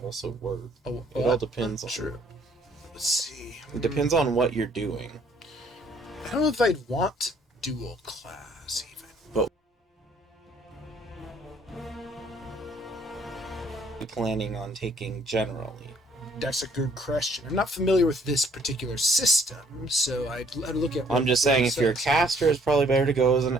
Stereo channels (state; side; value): normal; both; correlation 0.62